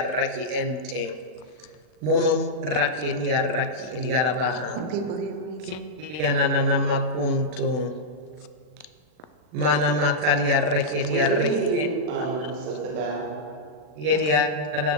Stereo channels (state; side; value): late; left; 40 ms